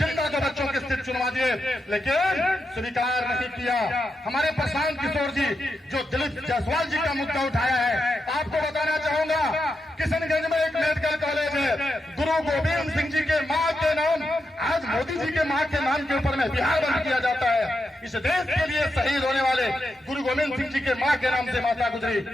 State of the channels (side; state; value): both; normal; correlation 0.86